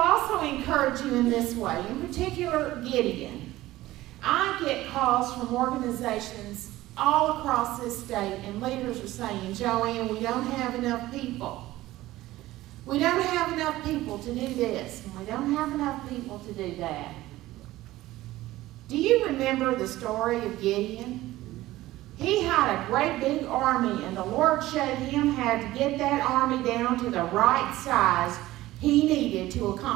encourage you in this way. In particular, Gideon. I get calls from organizations all across this state, and leaders are saying, Joanne, we don't have enough people. We don't have enough people to do this, and we don't have enough people to do that. Do you remember the story of Gideon? He had a great big army, and the Lord showed him how to get that army down to the right size he needed to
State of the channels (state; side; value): quieter; left; 16.6 dB